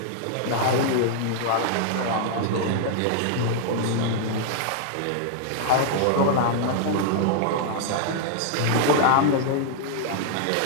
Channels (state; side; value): different; both; correlation -0.01